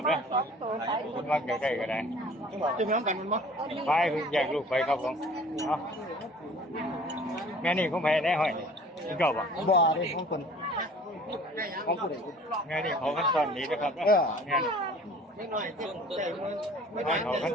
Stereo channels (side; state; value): both; normal; correlation 0.48